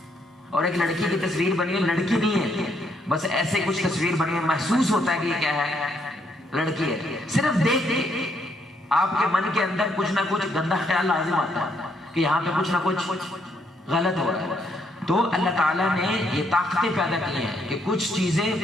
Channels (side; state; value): both; normal; correlation 0.73